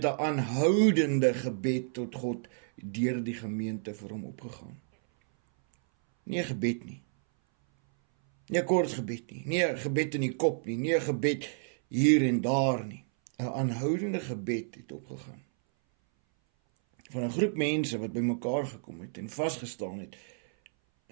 'n aanhoudende gebed tot God deur die gemeente vir hom opgegaan. Nie 'n gebed nie. Nie 'n kort gebed nie, nie 'n gebed in die kop nie, nie 'n gebed hier en daar nie. 'n Aanhoudende gebed het opgegaan. Van 'n groep mense wat bymekaar gekom het en vasgestaan het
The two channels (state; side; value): silent; left; 57 dB below the other